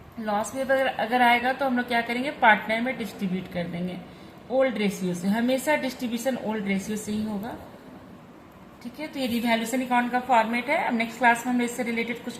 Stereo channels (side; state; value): both; identical; correlation 1.00